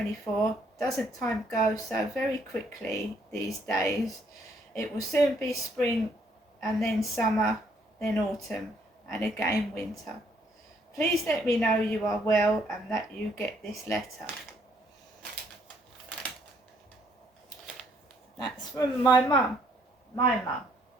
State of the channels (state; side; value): normal; both; correlation 0.67